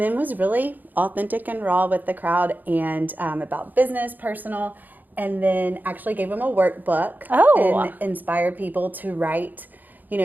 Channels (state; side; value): late; left; 0.085 ms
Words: was really authentic and raw with the crowd, and about business, personal, and then actually gave them a workbook and inspired people to write,